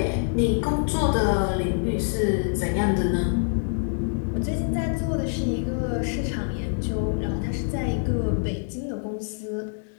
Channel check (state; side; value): silent; right; digital silence